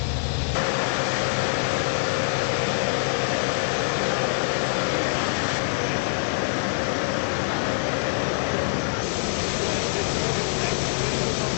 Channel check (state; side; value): silent; right; digital silence